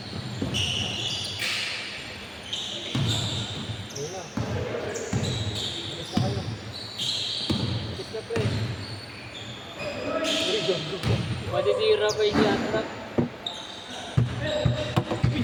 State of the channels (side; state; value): both; identical; correlation 1.00